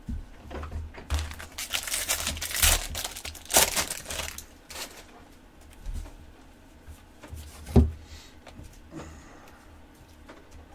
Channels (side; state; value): both; identical; correlation 1.00